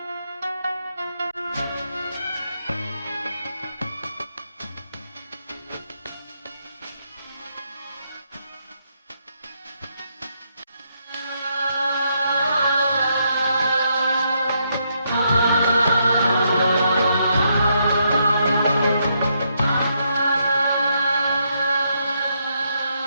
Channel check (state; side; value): inverted; both; correlation -0.77